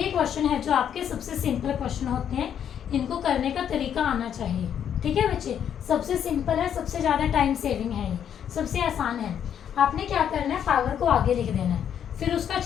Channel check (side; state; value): right; quieter; 9.0 dB